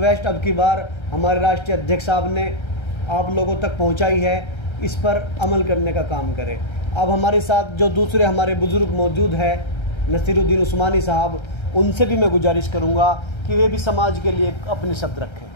अब की बार हमारे राष्ट्रीय अध्यक्ष साहब ने आप लोगों तक पहुँचाई है, इस पर अमल करने का काम करें। अब हमारे साथ जो दूसरे हमारे बुज़ुर्ग मौजूद है नसीरुद्दीन उस्मानी साहब, उनसे भी मैं गुजारिश करूंगा कि वे भी समाज के लिए अपने शब्द रखें।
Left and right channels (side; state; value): right; late; 1.3 ms